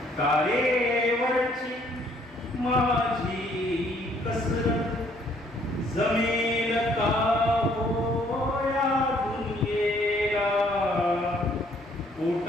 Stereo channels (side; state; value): both; normal; correlation 0.64